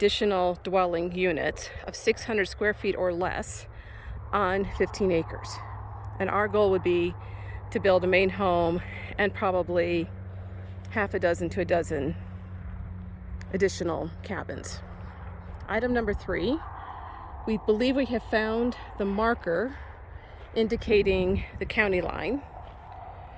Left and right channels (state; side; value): identical; both; correlation 1.00